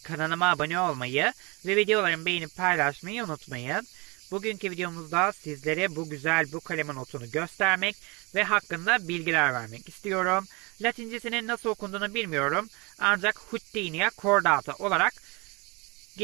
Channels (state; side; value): quieter; left; 27.7 dB